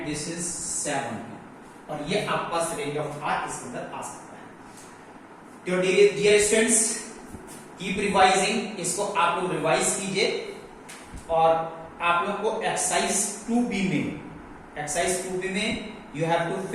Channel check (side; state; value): both; identical; correlation 1.00